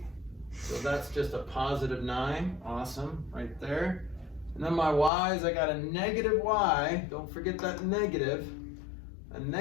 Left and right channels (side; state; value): right; drops out; at 5.1 s